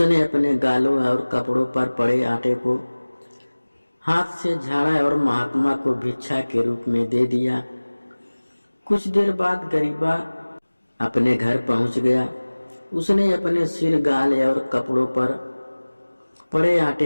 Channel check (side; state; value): both; inverted; correlation -1.00